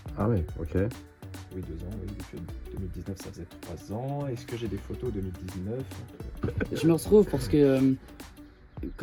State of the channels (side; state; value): both; identical; correlation 1.00